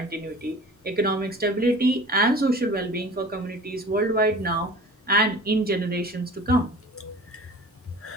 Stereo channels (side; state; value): both; normal; correlation 0.42